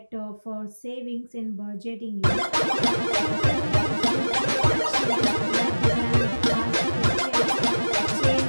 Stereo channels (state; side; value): inverted; both; correlation -1.00